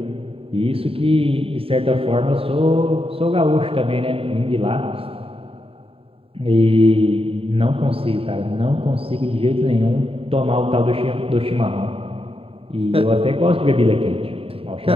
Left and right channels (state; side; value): late; left; 0.27 ms